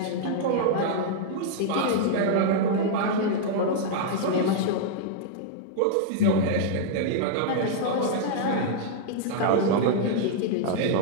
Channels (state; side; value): different; both; correlation -0.01